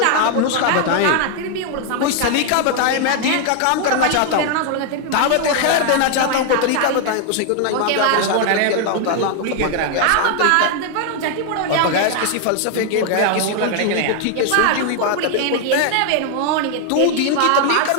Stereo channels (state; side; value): different; both; correlation 0.00